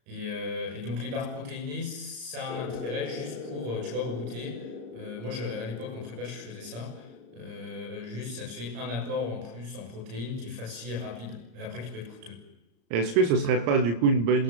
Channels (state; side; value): late; left; 34 ms